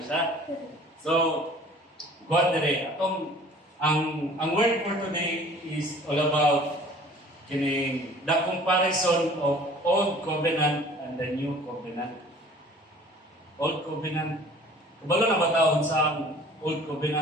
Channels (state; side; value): normal; both; correlation 0.49